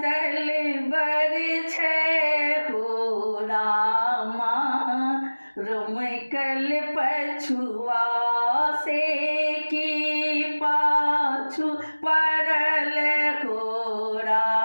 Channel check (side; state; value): both; inverted; correlation -1.00